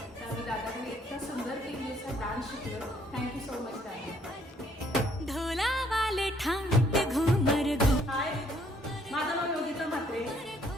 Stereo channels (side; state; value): both; normal; correlation 0.65